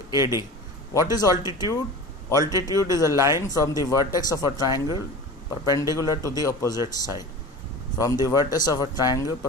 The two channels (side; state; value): both; normal; correlation 0.34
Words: AD. What is altitude? Altitude is a line from the vertex of a triangle perpendicular to the opposite side. From the vertex of a triangle